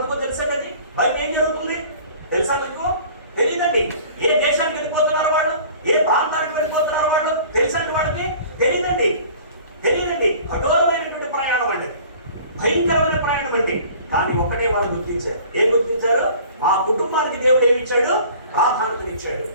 తెలుసండి. అది బయట ఏం జరుగుతుంది తెలుసా మీకు? తెలియదండి. ఏ దేశానికి వెళ్ళిపోతున్నారు వాళ్ళు, ఏ ప్రాంతానికి వెళ్ళిపోతున్నారు వాళ్ళు తెలుసండి వాడికి? తెలియదండి. కఠోరమైనటువంటి ప్రయాణం అండి, భయంకరమైన ప్రయాణం అండి. కానీ ఒకటే వాళ్ళు గుర్తించారు. ఏం గుర్తించారు? మా కుటుంబానికి దేవుడు ఏమి ఇచ్చాడు? ప్రాధాన్యతనిచ్చాడు.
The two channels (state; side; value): inverted; both; correlation -0.47